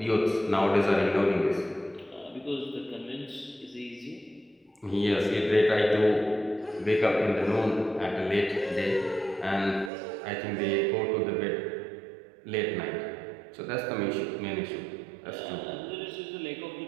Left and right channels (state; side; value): drops out; left; at 9.9 s